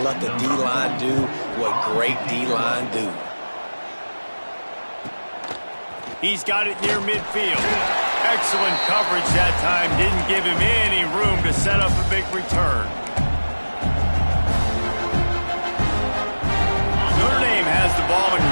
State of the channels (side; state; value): both; inverted; correlation -1.00